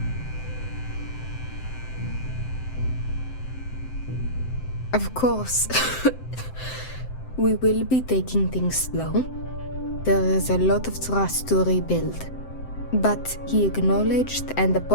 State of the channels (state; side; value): late; right; 7.7 ms